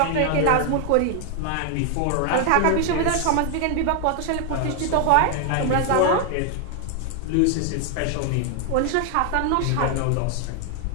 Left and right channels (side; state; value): both; different; correlation 0.00